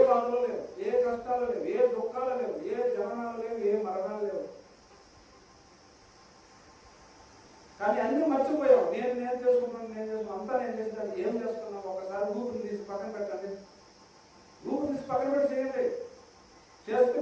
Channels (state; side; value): identical; both; correlation 1.00